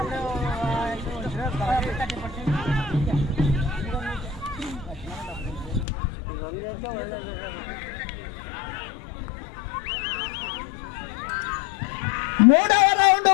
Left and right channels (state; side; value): drops out; right; at 5.9 s